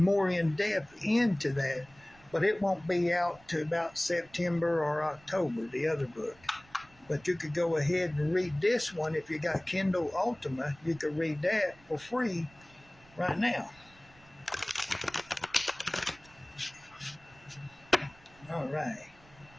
in depth into that, but it won't be out to about September or October, the other book. But you could go ahead and read this one. If you got Kindle Ultima, you could read that for free right now. All right.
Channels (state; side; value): noise; right; rumble, 26 dB below the sound